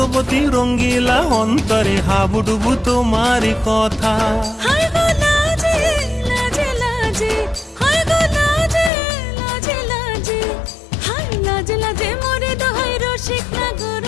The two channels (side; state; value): right; drops out; at 8.9 s